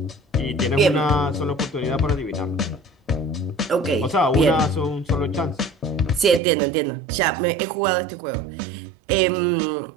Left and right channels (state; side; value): drops out; left; at 6.4 s